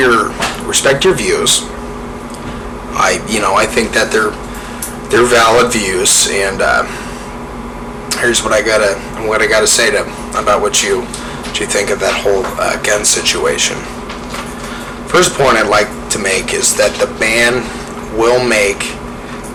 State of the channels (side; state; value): both; identical; correlation 1.00